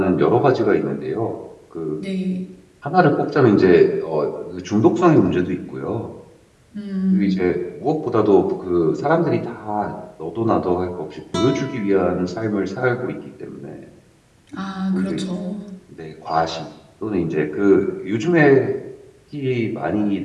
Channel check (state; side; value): identical; both; correlation 1.00